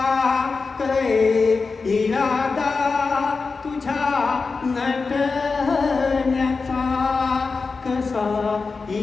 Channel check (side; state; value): right; quieter; 4.4 dB